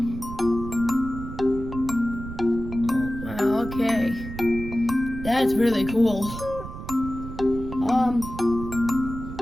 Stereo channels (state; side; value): noise; right; rumble, 10 dB below the sound